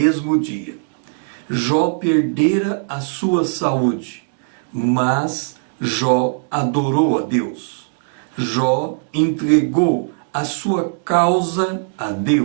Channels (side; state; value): left; silent; digital silence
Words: dia. Jó perdera a sua saúde. Mas Jó adorou a Deus. Jó entregou a sua causa a